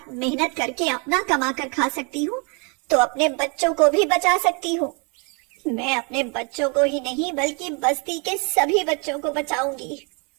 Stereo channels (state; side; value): quieter; left; 34.5 dB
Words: मेहनत करके अपना कमा कर खा सकती हूँ, तो अपने बच्चों को भी बचा सकती हूँ। मैं अपने बच्चों को ही नहीं बल्कि बस्ती के सभी बच्चों को बचाऊंगी।